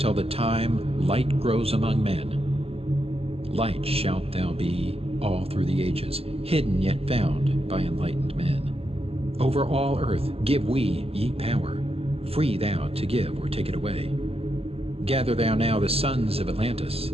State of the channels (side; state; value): left; late; 0.29 ms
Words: the time light grows among men. Light shalt thou be all through the ages, hidden yet found by enlightened men. Over all earth give we ye power, free thou to give or take it away. Gather thou now the sons of Atlantis,